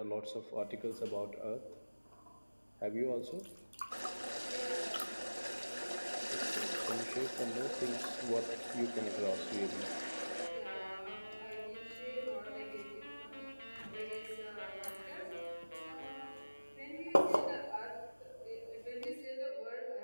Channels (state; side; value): inverted; both; correlation -1.00